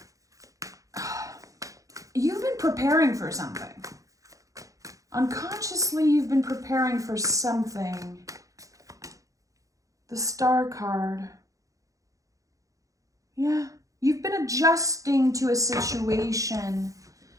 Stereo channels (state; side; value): late; left; 0.16 ms